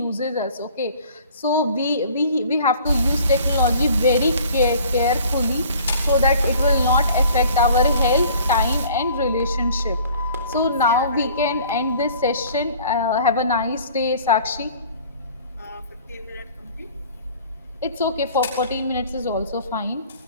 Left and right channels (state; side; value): inverted; both; correlation -0.51